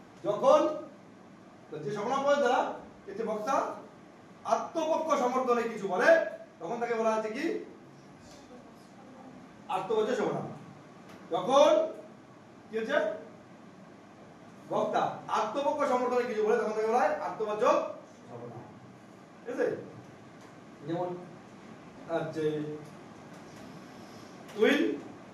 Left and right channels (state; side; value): identical; both; correlation 1.00